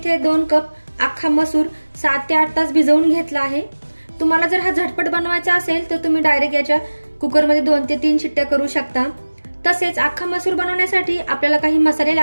2 कप अख्खा मसूर 7 ते 8 तास भिजवून घेतला आहे। तुम्हाला जर हा झटपट बनवायचा असेल तर तुम्ही डायरेक्ट याच्या कुकर मध्ये 2 ते 3 शिट्ट्या करू शकता। तसेच अख्खा मसूर बनवण्यासाठी आपल्याला काही मसाले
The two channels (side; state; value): both; inverted; correlation -1.00